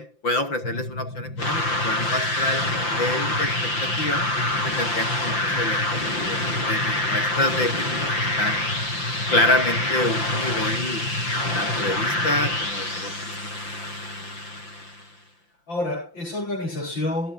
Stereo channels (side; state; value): right; late; 5.8 ms